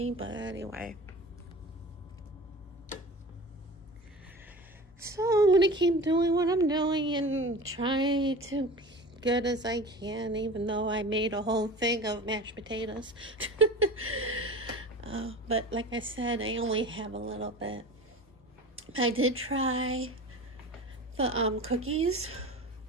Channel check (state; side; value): normal; both; correlation 0.35